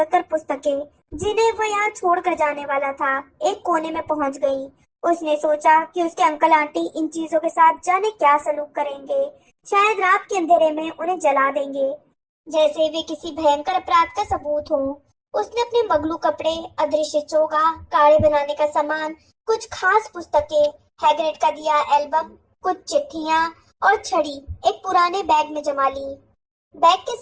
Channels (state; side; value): identical; both; correlation 1.00